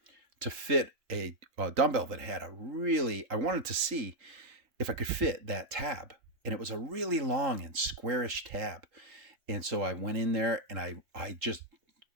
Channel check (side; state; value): left; late; 3.8 ms